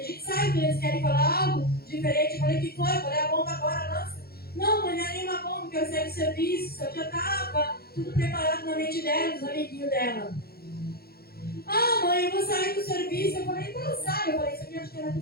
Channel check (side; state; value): right; late; 0.45 ms